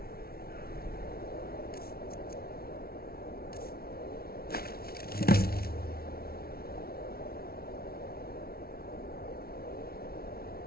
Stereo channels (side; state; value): right; late; 0.44 ms